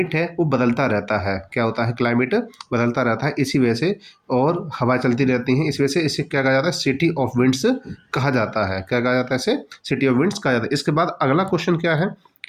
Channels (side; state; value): both; identical; correlation 1.00